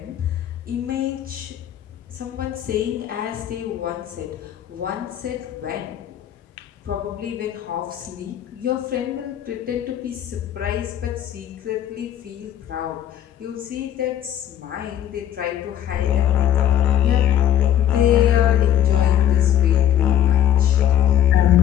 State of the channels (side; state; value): right; quieter; 10.9 dB